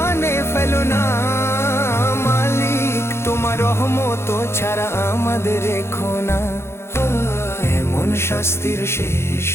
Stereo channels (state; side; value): late; right; 0.12 ms